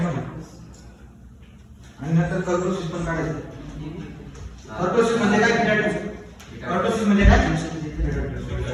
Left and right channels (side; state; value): both; identical; correlation 1.00